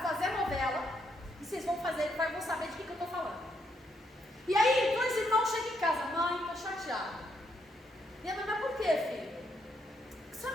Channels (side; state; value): both; normal; correlation 0.76